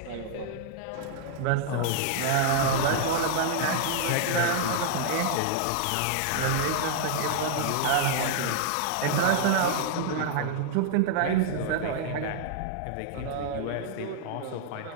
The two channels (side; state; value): both; different; correlation -0.01